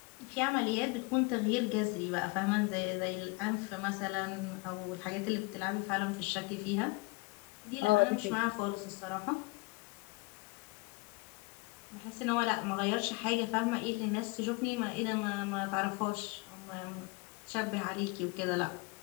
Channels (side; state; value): right; quieter; 26.1 dB